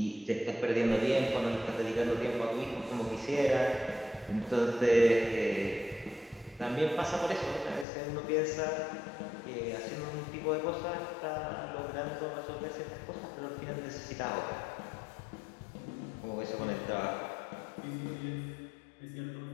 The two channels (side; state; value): right; drops out; at 7.9 s